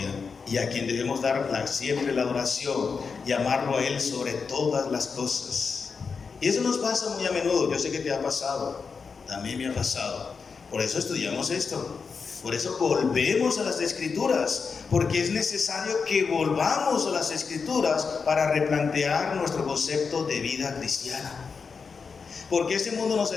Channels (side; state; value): right; quieter; 5.3 dB